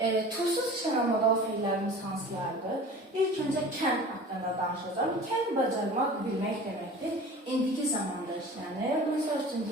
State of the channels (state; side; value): normal; both; correlation 0.40